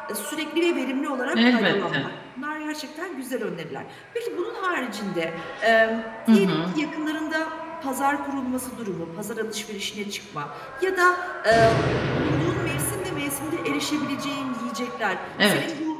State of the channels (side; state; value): both; identical; correlation 1.00